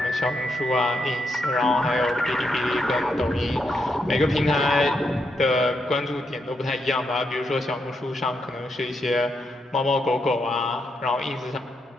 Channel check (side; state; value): both; normal; correlation 0.81